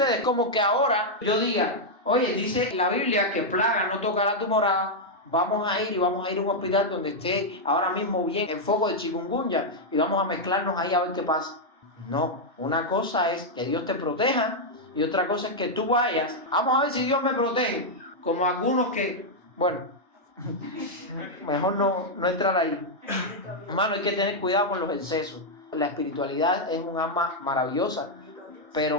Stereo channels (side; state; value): both; normal; correlation -0.03